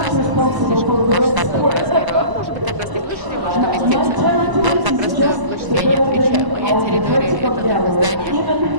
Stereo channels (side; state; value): left; late; 1.0 ms